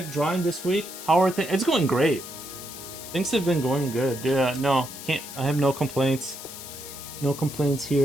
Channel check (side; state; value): left; noise; hiss, 12 dB below the sound